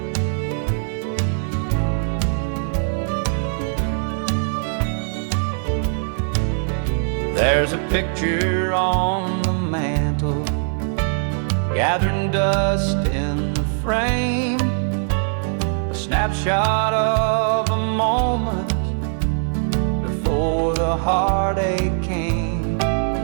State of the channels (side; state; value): left; silent; digital silence